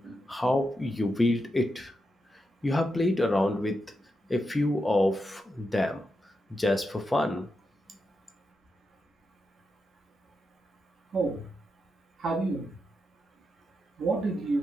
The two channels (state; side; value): normal; both; correlation 0.86